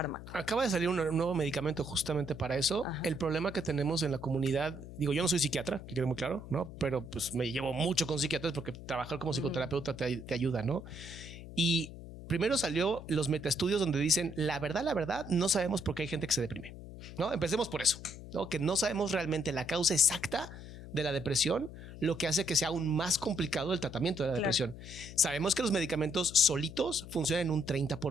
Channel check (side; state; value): left; noise; hum, 13 dB below the sound